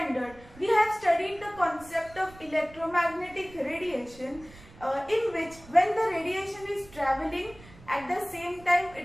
we have studied the concept of electromagnetic radiation, in which when the radiation is traveling, at the same time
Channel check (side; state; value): right; noise; rumble, 21 dB below the sound